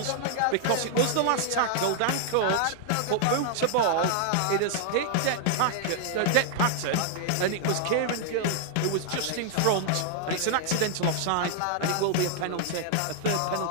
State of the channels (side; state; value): both; different; correlation 0.00